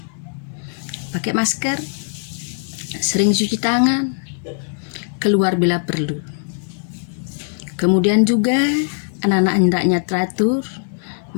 Pakai masker, sering cuci tangan, keluar bila perlu. Kemudian juga anak-anak hendaknya teratur,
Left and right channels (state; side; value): silent; right; digital silence